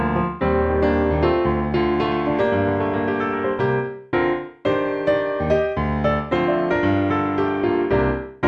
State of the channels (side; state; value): both; identical; correlation 1.00